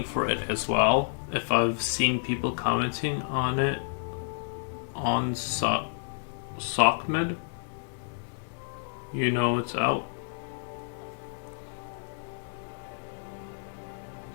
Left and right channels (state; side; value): silent; right; digital silence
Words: for it as well. If I've seen people commenting on it on Sockmed, you know it's out.